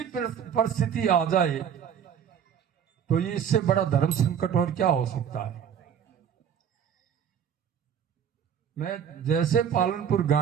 परिस्थिति आ जाए तो ये इससे बड़ा धर्म संकट और क्या हो सकता है। मैं जैसे पालनपुर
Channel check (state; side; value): quieter; left; 8.3 dB